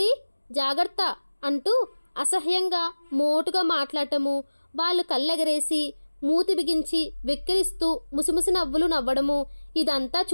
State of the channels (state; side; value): inverted; both; correlation -1.00